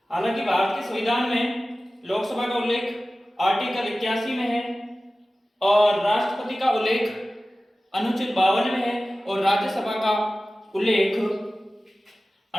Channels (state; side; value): normal; both; correlation 0.96